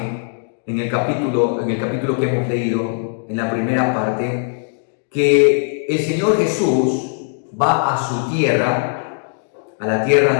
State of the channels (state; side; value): silent; right; 60 dB below the other